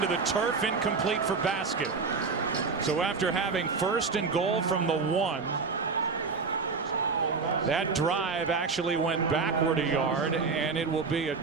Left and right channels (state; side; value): quieter; left; 4.7 dB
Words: the turf, incomplete for basket. So after having 1st and goal from the 1, that drive actually went backward 1 yard, and it will be a